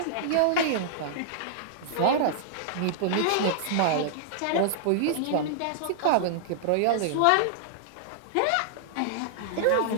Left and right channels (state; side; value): different; both; correlation -0.01